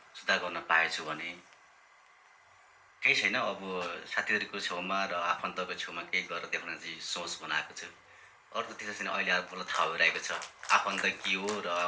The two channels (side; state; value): both; identical; correlation 1.00